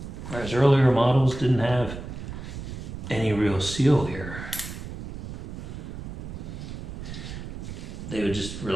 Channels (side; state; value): right; noise; rumble, 9 dB below the sound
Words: Whereas earlier models didn't have any real seal here. They would just